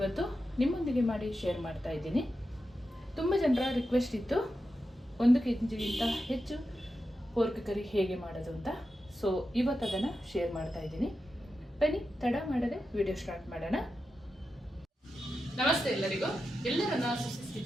ನಿಮ್ಮೊಂದಿಗೆ ಮಾಡಿ ಶೇರ್ ಮಾಡ್ತಾ ಇದ್ದೀನಿ. ತುಂಬ ಜನರ ರಿಕ್ವೆಸ್ಟ್ ಇತ್ತು 1 kgಗಿಂತ ಹೆಚ್ಚು ಪೋರ್ಕ್ ಕರಿ ಹೇಗೆ ಮಾಡೋದು ಅಂತ. ಸೊ ಇವತ್ತು ಅದನ್ನು ಶೇರ್ ಮಾಡ್ತಾ ಇದ್ದೀನಿ. ಬನ್ನಿ ತಡ ಮಾಡದೆ ವಿಡಿಯೋ ಸ್ಟಾರ್ಟ್ ಮಾಡೋಣ. ನಮಸ್ತೆ ಎಲ್ಲರಿಗೂ, ಎಲ್ಲರನ್ನ ಸುಸಿಸ್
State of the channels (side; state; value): both; normal; correlation 0.90